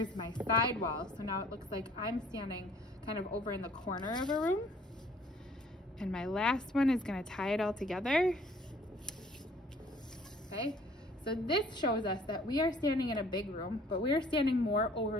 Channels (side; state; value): both; normal; correlation 0.56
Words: my side wall. So now it looks like I'm standing kind of over in the corner of a room. And my last one is gonna tie it all together. Okay, so this shows us that we are standing in a big room, but we are standing more